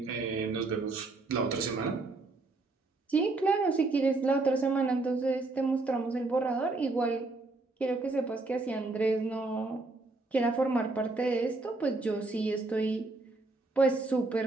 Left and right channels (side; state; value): left; quieter; 3.3 dB